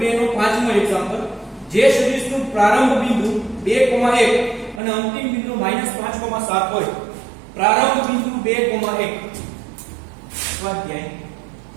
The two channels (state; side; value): drops out; left; at 4.8 s